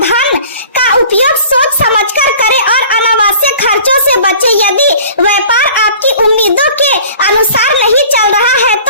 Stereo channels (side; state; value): both; inverted; correlation -0.47